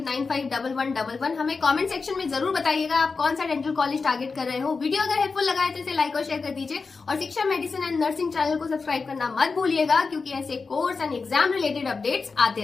हमें कमेंट सेक्शन में जरूर बताइएगा आप कौन सा डेंटल कॉलेज टारगेट कर रहे हो। वीडियो अगर हेल्पफुल लगा है तो इसे लाइक और शेयर कर दीजिए और शिक्षा मेडिसिन एंड नर्सिंग चैनल को सब्सक्राइब करना मत भूलिएगा, क्योंकि ऐसे course and exam related updates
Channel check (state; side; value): quieter; right; 4.5 dB